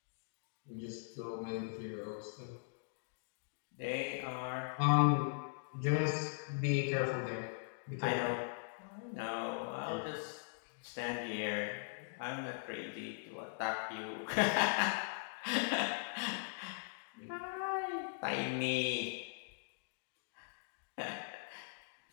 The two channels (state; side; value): silent; right; digital silence